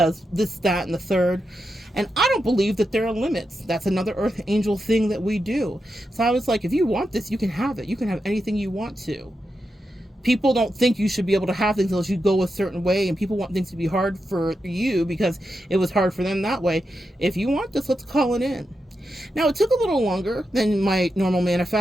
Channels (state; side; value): normal; both; correlation 0.87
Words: this, that, and the third. And I don't believe that there are limits. That's another earth angel thing that we do. So I was like, if you want this, you can have it. You can have anything you want to. People don't think you should be able to have things unless you go a certain way, and people want things to be hard for you because it was hard for them that way. If you want this, let's call it in. Now, it took a little longer than my normal